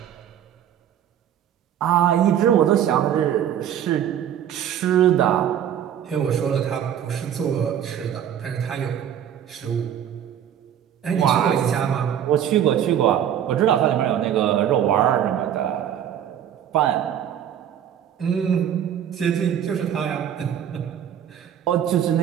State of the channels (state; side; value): quieter; left; 9.8 dB